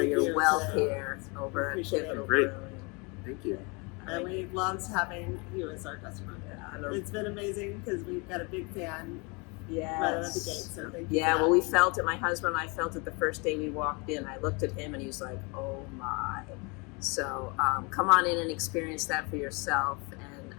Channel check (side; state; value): right; quieter; 30.2 dB